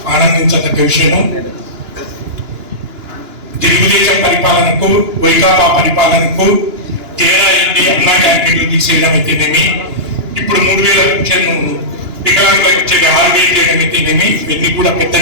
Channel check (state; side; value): late; left; 2.9 ms